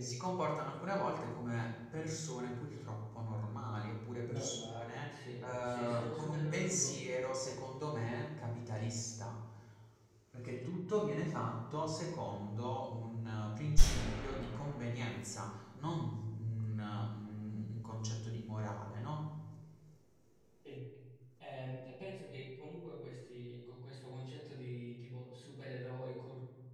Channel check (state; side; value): identical; both; correlation 1.00